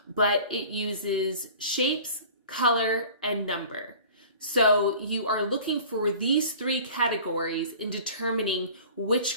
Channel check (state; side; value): inverted; both; correlation -0.44